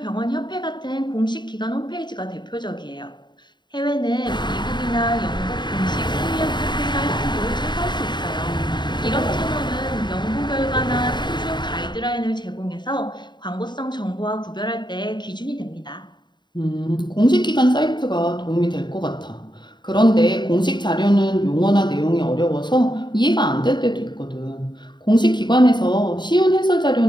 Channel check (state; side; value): late; right; 0.22 ms